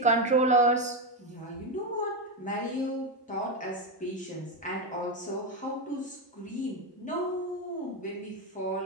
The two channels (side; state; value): both; normal; correlation 0.09